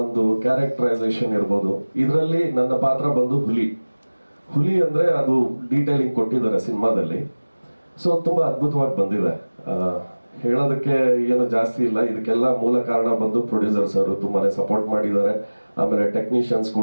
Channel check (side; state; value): both; inverted; correlation -1.00